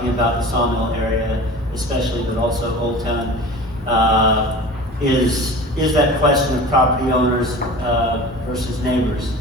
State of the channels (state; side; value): normal; both; correlation 0.37